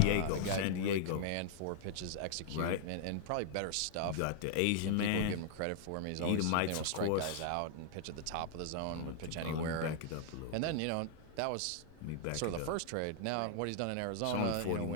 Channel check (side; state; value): both; different; correlation -0.01